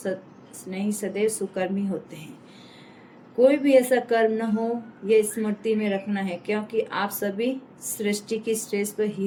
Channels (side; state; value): both; identical; correlation 1.00